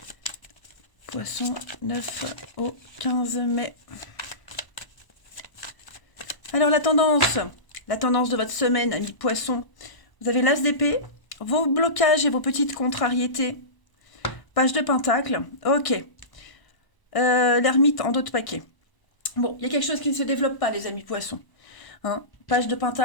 Poisson 9 au 15 mai. Alors la tendance de votre semaine, amis poissons. Vous avez l'as d'épée, vos blocages et vos petites contrariétés. Page de pentacle, ok. L'ermite en dos de paquet. Bon, il y a quelque chose qui ne se développe pas, les amis poissons. Hein, page de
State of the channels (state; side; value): late; right; 1.0 ms